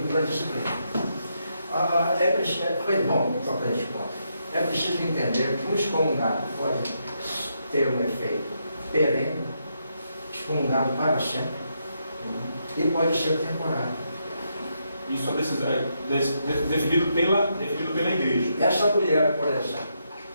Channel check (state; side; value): inverted; both; correlation -0.80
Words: pela disciplina. Foi bom tocar esse ponto. É preciso entender que um excomungado pode ter um efeito perene, excomungado para sempre, e pode ser temporário. Isso é definido pela igreja. Essa mulher, por exemplo,